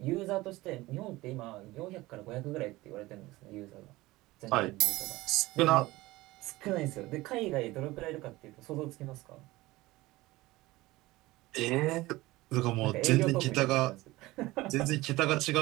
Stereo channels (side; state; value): left; quieter; 19.3 dB